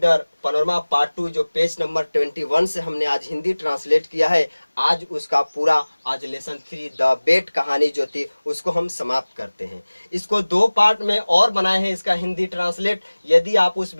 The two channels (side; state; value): both; inverted; correlation -1.00